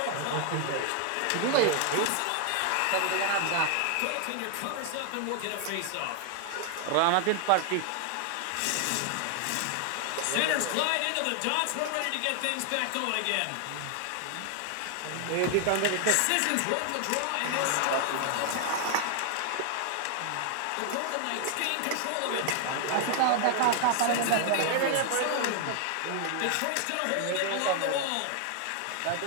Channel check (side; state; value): both; different; correlation 0.00